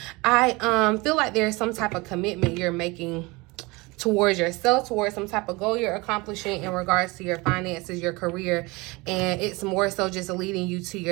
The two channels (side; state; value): left; quieter; 24.3 dB